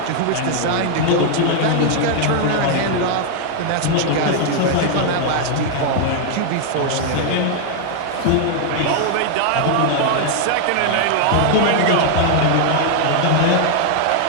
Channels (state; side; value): different; both; correlation 0.00